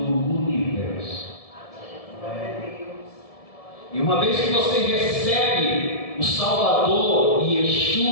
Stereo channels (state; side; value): late; right; 1.7 ms